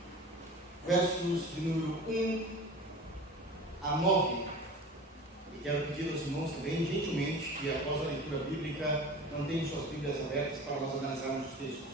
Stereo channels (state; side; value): normal; both; correlation 0.37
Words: versos de número 1 a 9. E quero pedir aos irmãos também, gentilmente, que após a leitura bíblica, mantenham suas Bíblias abertas para nós analisarmos os textos.